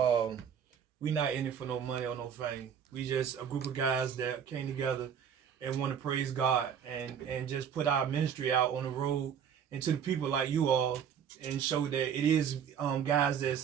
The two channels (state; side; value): quieter; left; 8.1 dB